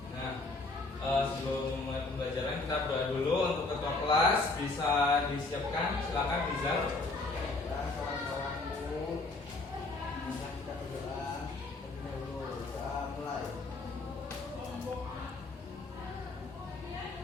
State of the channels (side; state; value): right; quieter; 3.4 dB